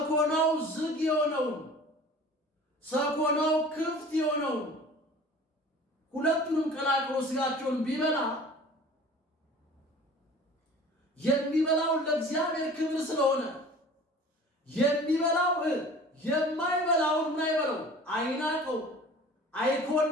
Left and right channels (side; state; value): both; normal; correlation 0.44